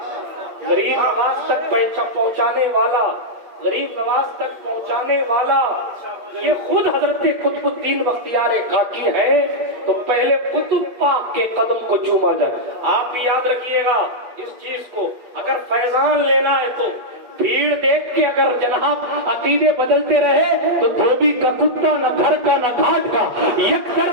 غریب نواز تک پہنچانے والا، غریب نواز تک پہنچانے والا یہ خود حضرت قطب الدین بختیار کاکی ہے. تو پہلے قطب پاک کے قدم کو چوما جائے. آپ بھی یاد رکھیے گا اس چیز کو. اگر فیضان لینا ہے تو بھیڑ دیکھ کے اگر جناب عقیدے بدلتے رہے تو دھوبی کا کتا نہ گھر کا نہ گھاٹ کا، یکسر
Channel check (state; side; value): late; left; 8.4 ms